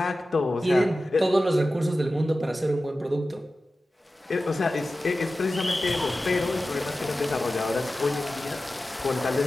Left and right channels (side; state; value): both; normal; correlation 0.94